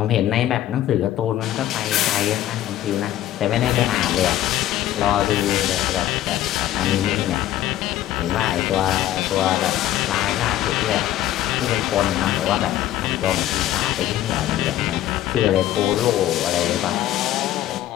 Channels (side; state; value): right; quieter; 13.1 dB